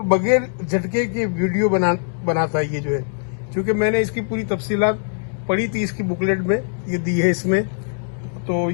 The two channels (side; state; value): right; silent; digital silence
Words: बगैर झटके के वीडियो बनाता है ये जो है। क्योंकि मैंने इसकी पूरी तफसीलात पढ़ी थी, इसकी बुकलेट में ये दी है इसमें, तो